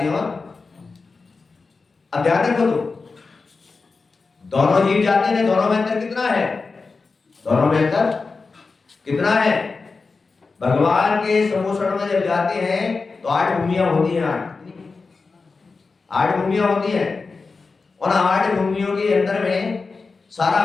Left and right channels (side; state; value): right; quieter; 4.3 dB